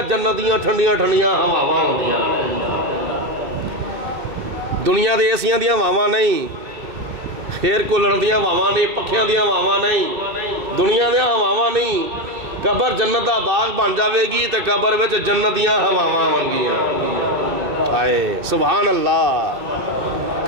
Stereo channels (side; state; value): left; late; 2.7 ms